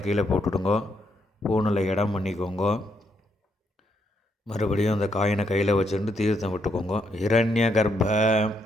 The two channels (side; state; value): both; normal; correlation 0.76